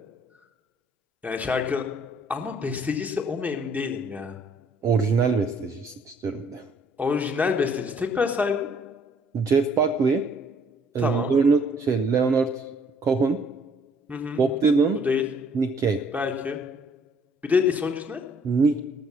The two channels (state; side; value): normal; both; correlation 0.62